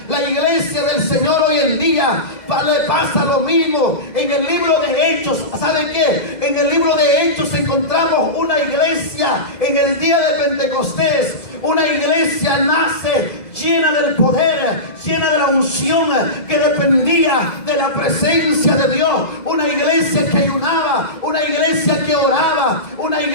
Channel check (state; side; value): late; right; 2.0 ms